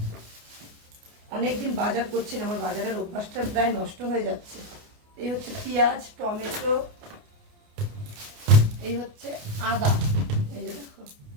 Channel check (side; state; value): left; late; 29 ms